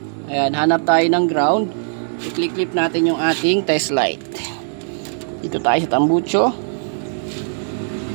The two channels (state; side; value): silent; left; digital silence